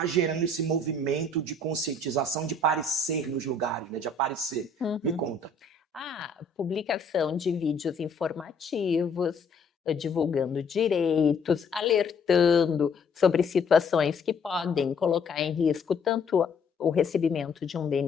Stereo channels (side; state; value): right; quieter; 3.5 dB